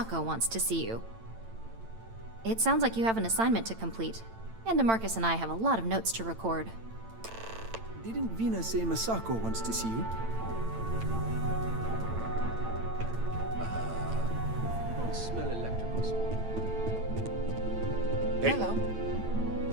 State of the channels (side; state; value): left; late; 8.9 ms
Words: wants to see you. It sounds like you have an assignment to complete, and DeMarcus and I have a lot of notes to record. Didn't Vina say Masako wants to see you? I don't smell electrical smoke. Hey. Hello.